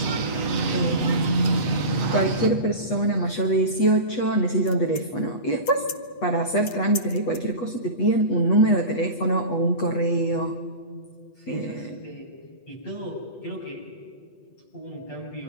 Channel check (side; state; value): right; late; 8.3 ms